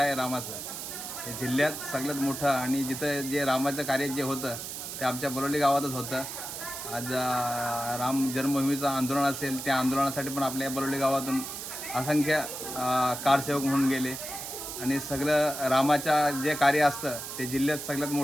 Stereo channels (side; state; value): right; noise; hiss, 7 dB below the sound